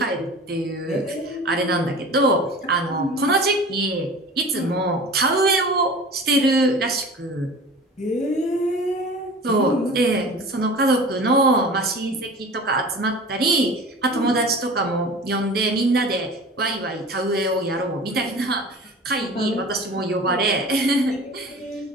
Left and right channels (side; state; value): both; normal; correlation 0.39